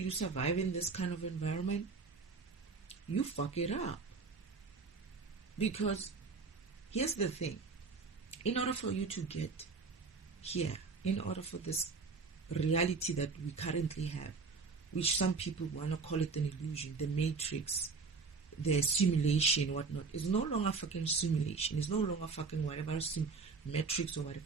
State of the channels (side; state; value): left; quieter; 4.7 dB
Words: survive in this kind of environment? You fuck it up. Because here's the thing. In order for you to get here, in order for this reality that we currently have, which some people want to call it an illusion, the matrix, the simulation, whatnot, is no longer fucking simulation. It's no longer fucking whatever matrix or